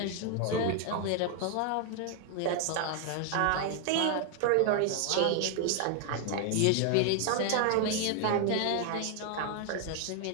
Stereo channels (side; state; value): both; different; correlation 0.00